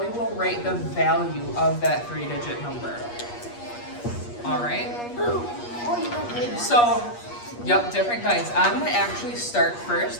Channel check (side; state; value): right; late; 8.4 ms